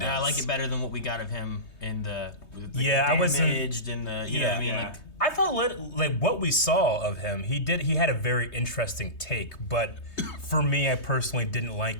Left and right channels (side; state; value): right; late; 3.2 ms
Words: I does. like it better than what we got of him in the I wasn't. damaged and the you know what I mean, yeah. like I thought like what we saw of him, he had a very interesting take, but for me, I personally didn't like